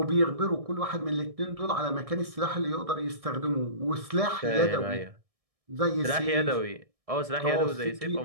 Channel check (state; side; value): late; left; 1.6 ms